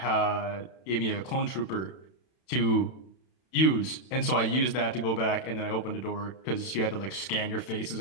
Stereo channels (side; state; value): right; late; 31 ms